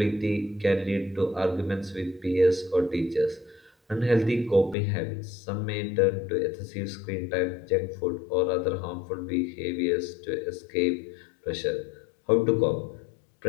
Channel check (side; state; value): right; drops out; at 4.8 s